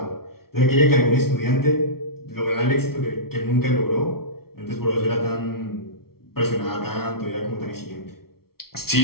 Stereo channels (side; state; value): right; late; 0.94 ms